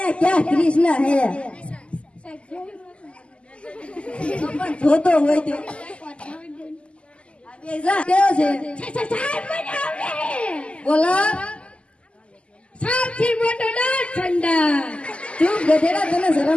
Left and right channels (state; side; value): late; right; 0.056 ms